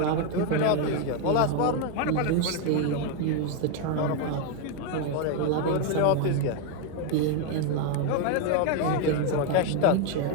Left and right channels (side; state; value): both; different; correlation 0.01